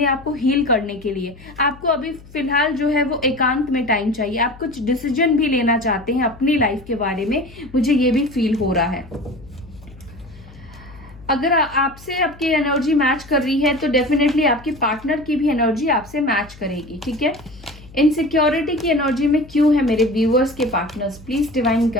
आप को हील करने के लिए। आपको अभी फिलहाल जो है वो एकांत में टाइम चाहिए, आप कुछ डिसीजन भी लेना चाहते हैं अपनी लाइफ के बारे में, मुझे ये भी फील हो रहा है। अगर आपसे आपकी एनर्जी मैच कर रही है तो डेफिनेटली आपके पार्टनर की भी एनर्जी आपसे मैच करेगी, ठीक है। इनसिक्योरिटी की एनर्जी में क्यों है मेरे व्यूअर्स के पार्टनर्स, प्लीज डिवाइन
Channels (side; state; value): left; noise; hum, 21 dB below the sound